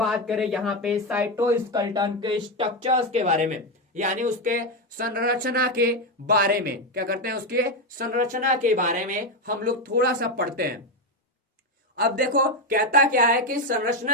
करें यहाँ पे साइटोस्केलेटन के स्ट्रक्चर्स के बारे में, यानी उसके संरचना के बारे में। क्या करते हैं? उसके संरचना के बारे में हम लोग थोड़ा सा पढ़ते हैं। अब देखो कहता क्या है कि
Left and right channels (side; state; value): both; normal; correlation 0.09